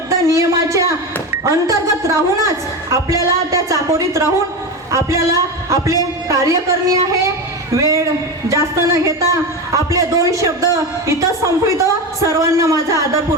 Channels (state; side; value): normal; both; correlation 0.20